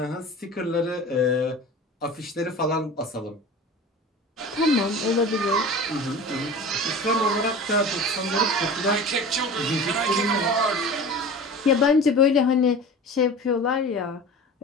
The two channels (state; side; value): normal; both; correlation 0.36